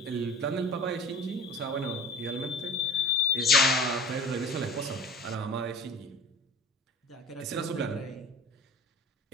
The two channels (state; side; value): normal; both; correlation 0.40